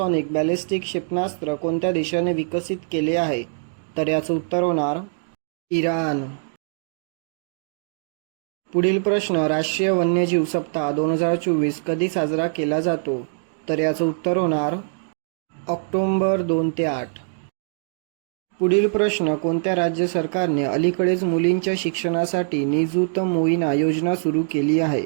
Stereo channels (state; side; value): silent; left; digital silence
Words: बॅलिस्टिक क्षेपणास्त्र कोणत्या देशाने विकसित केले आहे? तर याचं उत्तर होणार इराण. पुढील प्रश्न, राष्ट्रीय वन्यजीव सप्ताह 2024 कधी साजरा केला जातो? तर याचं उत्तर होणार ऑक्टोबर 2 ते 8. पुढील प्रश्न, कोणत्या राज्य सरकारने अलीकडेच मुलींच्या शिक्षणासाठी निजुत मोइना योजना सुरू केली आहे?